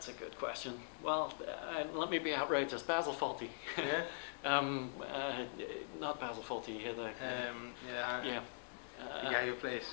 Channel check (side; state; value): right; silent; digital silence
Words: a good question. Well, let me be outrageous. Basil Fawlty. Yeah. Not Basil Fawlty. Yeah.